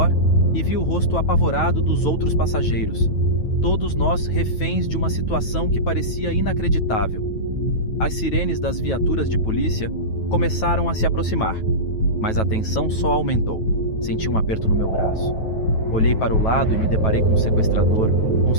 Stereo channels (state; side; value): late; right; 9.2 ms